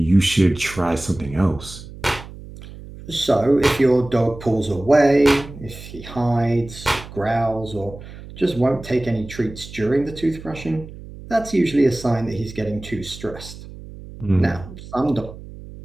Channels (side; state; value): right; noise; hum, 15 dB below the sound